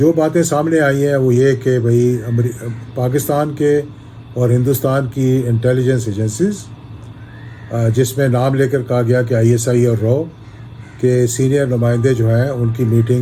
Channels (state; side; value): identical; both; correlation 1.00